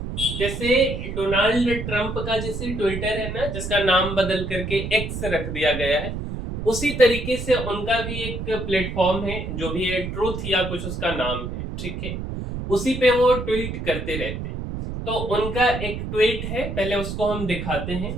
जैसे डोनाल्ड ट्रंप का जैसे ट्विटर है ना, जिसका नाम बदल करके एक्स रख दिया गया है, उसी तरीके से उनका भी एक प्लेटफॉर्म है जो भी है ट्रूथ या कुछ उसका नाम है, ठीक है। उसी पे वो ट्वीट करते रहते हैं। तो उनका एक ट्वीट है, पहले उसको हम दिखाते हैं।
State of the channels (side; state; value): right; noise; rumble, 5 dB below the sound